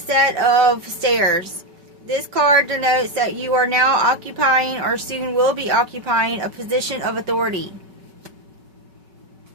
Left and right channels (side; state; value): left; late; 5.2 ms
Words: of stairs. This card denotes that you are now occupying or soon will be occupying a position of authority.